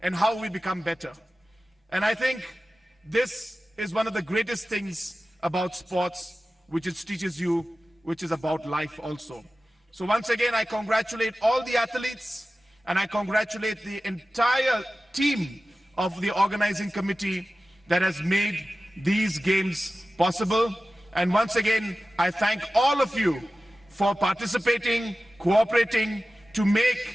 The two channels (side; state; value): both; normal; correlation 0.95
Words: and how we become better. And I think this is one of the greatest things about sports, which it teaches you, which is about life also. So once again, I congratulate all the athletes, and I congratulate the entire team of the organizing committee that has made these games possible. And once again, I thank all of you for participating, cooperating to